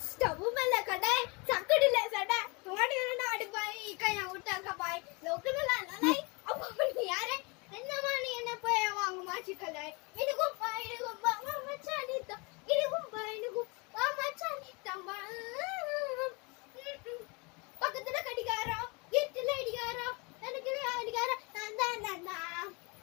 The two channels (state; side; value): quieter; right; 29.2 dB